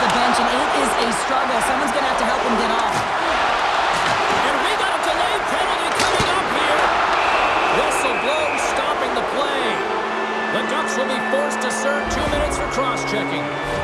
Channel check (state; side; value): identical; both; correlation 1.00